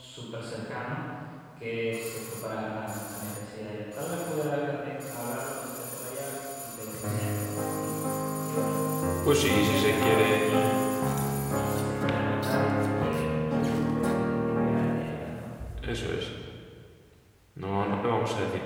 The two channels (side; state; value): both; identical; correlation 1.00